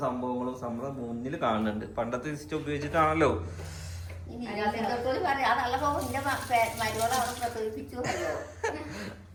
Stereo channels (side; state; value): both; identical; correlation 1.00